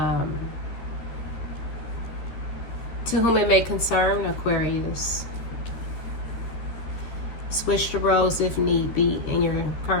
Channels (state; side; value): late; right; 13 ms